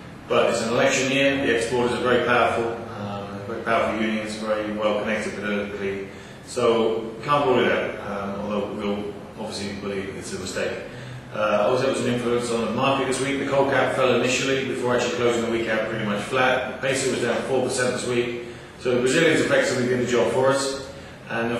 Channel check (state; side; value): identical; both; correlation 1.00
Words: But it's an election year. The exporters are very powerful unions, very well connected politically. So can't rule it out. Although we'll obviously believe it's a mistake. Also, there was an influence on the market this week. The coal cap fell initially before actually closing the week out pretty much flat. The peso was down 4% this week. So the Brazilians effectively did the job for us. And then